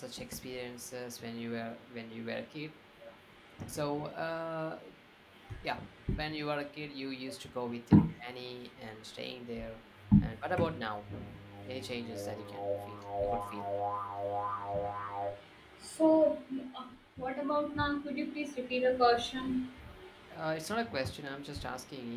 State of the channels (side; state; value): both; identical; correlation 1.00